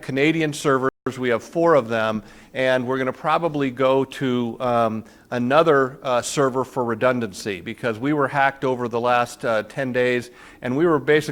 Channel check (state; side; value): identical; both; correlation 1.00